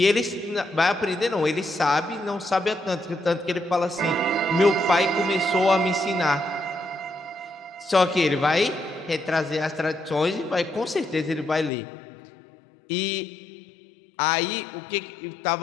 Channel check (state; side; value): drops out; right; at 11.7 s